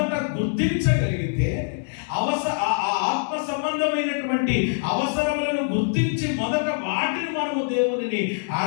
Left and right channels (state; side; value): silent; right; digital silence